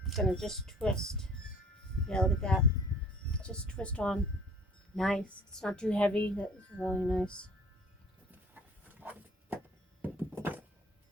going to just twist. Yeah, look at that. Just twist on. Nice. It's not too heavy. That's really nice.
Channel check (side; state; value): both; normal; correlation 0.50